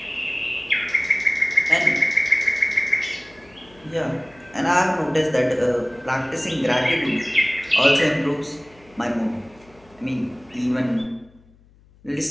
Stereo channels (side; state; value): left; noise; hum, 28 dB below the sound